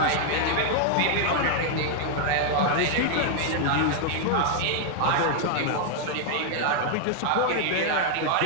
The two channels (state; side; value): different; both; correlation 0.00